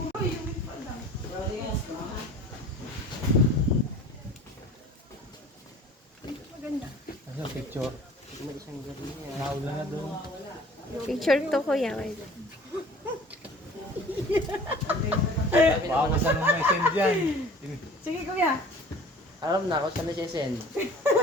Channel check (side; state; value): both; normal; correlation 0.46